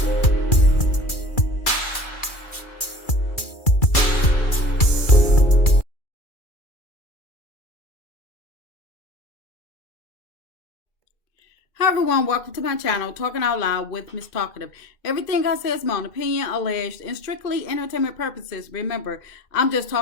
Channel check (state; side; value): late; right; 2.4 ms